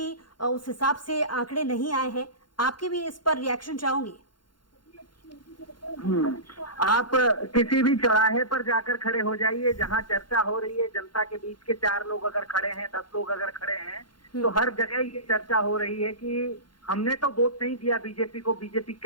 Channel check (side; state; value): right; late; 0.71 ms